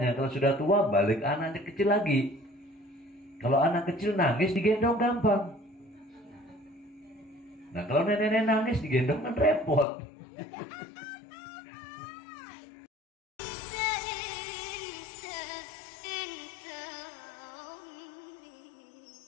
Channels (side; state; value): right; drops out; at 9.9 s